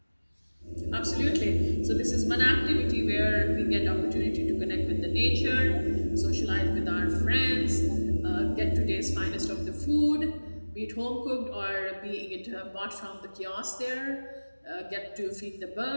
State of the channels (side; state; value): both; inverted; correlation -1.00